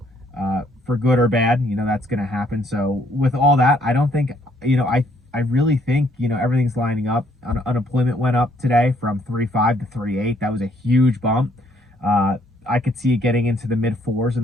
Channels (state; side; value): normal; both; correlation 0.67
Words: for good or bad, that's going to happen. So with all that, I don't think, I really think, everything's lining up. Unemployment went up today from 3.5 to 3.8. That was a huge bump. I could see it getting into the mid 4s in